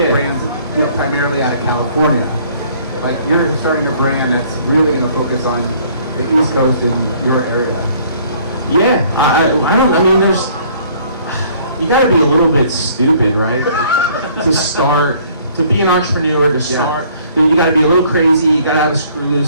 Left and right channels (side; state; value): both; inverted; correlation -0.58